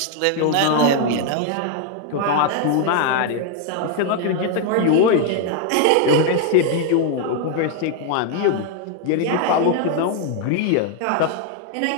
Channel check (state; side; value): different; both; correlation 0.00